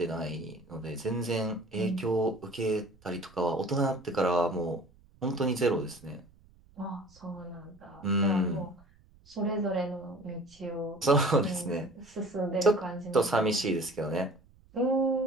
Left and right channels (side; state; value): right; noise; rumble, 28 dB below the sound